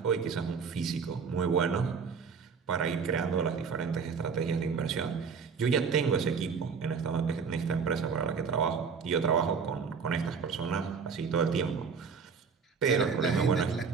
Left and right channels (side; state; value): left; quieter; 5.7 dB